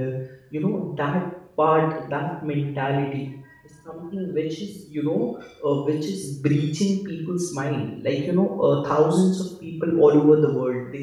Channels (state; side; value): identical; both; correlation 1.00